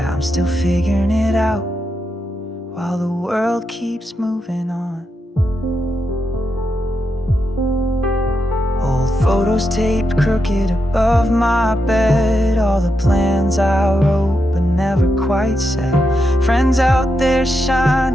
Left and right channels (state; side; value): normal; both; correlation 0.85